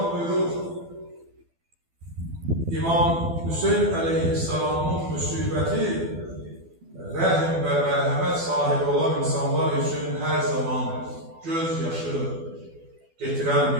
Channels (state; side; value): late; left; 12 ms